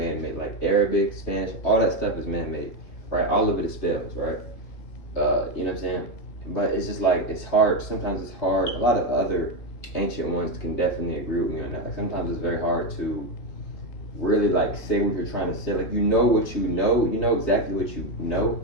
like Arabic, Spanish, all that stuff is man-made, right? All of it is spells, right? You know what I'm saying? But it's just like, it's hard. Sometimes it's hard. A lot of other ancient ones can definitely agree with me on that. Like sometimes it's very hard to really like say what you're trying to say. Like you know exactly what you know,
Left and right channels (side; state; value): right; late; 3.1 ms